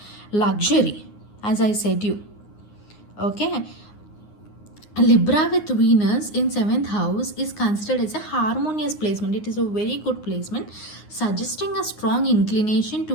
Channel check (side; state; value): right; late; 9.6 ms